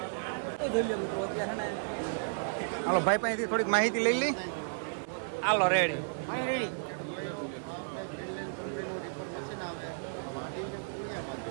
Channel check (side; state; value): left; silent; digital silence